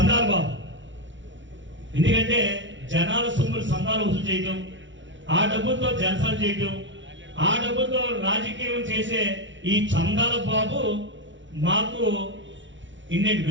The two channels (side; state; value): left; late; 0.55 ms